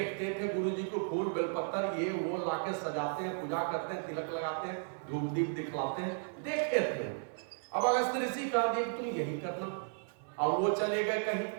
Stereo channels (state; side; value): silent; left; 55 dB below the other